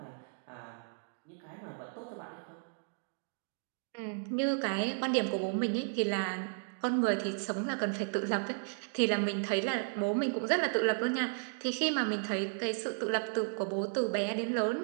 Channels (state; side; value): silent; left; digital silence